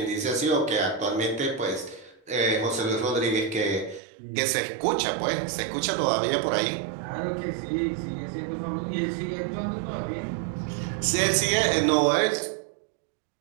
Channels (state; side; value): drops out; left; at 4.0 s